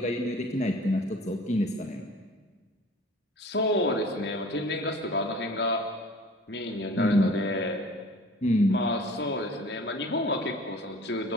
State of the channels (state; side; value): normal; both; correlation 0.45